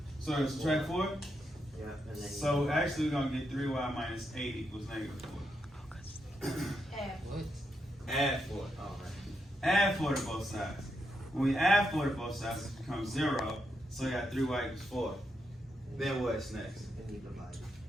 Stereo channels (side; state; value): both; normal; correlation 0.82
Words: So it's subtract 4? yeah, and then So actually we're gonna get 3y minus 8 equals negative 4. What? Add 4. oh right. Add 4 to both sides. When we add 4 to both sides, it becomes 0. So we got 3y equals 4. Then what's next? And you divide.